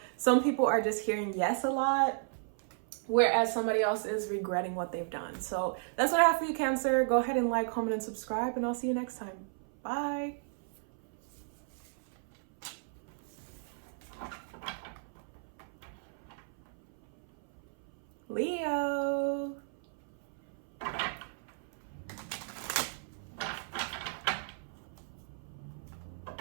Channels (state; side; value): silent; left; 55 dB below the other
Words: some people are just hearing yes a lot, whereas somebody else is regretting what they've done. So that's what I have for you, Cancer. Go ahead and like, comment, and subscribe, and I'll see you next time. Bye. Leo.